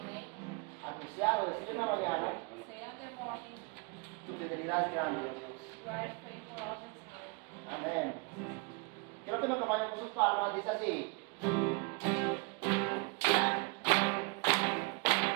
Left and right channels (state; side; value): quieter; left; 30.5 dB